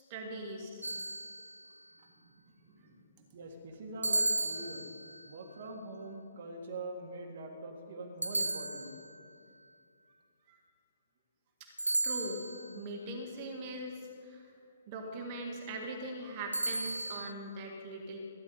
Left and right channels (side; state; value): both; inverted; correlation -0.83